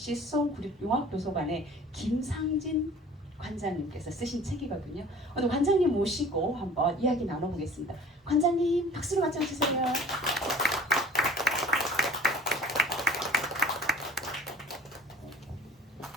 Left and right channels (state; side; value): normal; both; correlation 0.46